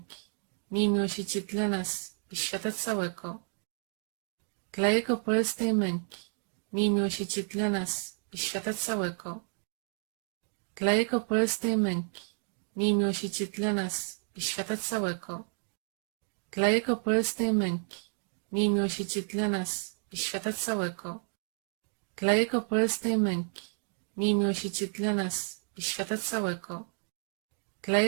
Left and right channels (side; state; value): left; silent; 57 dB below the other